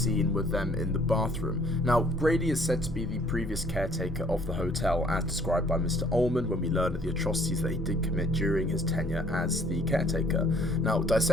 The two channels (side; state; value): both; normal; correlation 0.59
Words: with them in the bathroom. Now, Grady is said to be the previous caretaker of the hotel, as described by Mr. Ullman when we learn of the atrocities that he did commit during his tenure as the caretaker. Now,